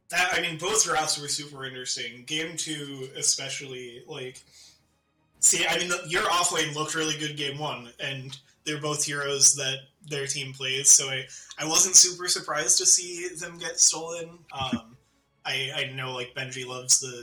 that. I mean, both drafts were super interesting. Game 2, especially, like, see, I mean, your offlane looked really good game 1, and they're both heroes that their team plays, so I wasn't super surprised to see them get stolen. I know, like, Benji loves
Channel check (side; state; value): both; identical; correlation 1.00